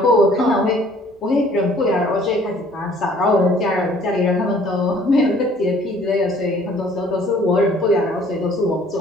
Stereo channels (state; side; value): normal; both; correlation 0.56